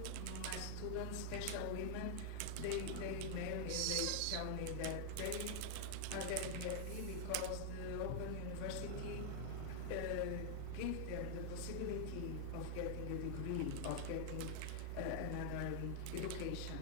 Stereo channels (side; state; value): both; different; correlation 0.00